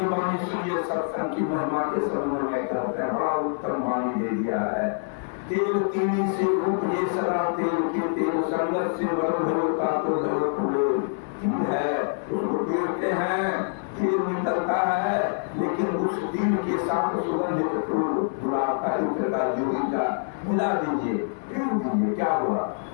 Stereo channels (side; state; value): right; silent; 61 dB below the other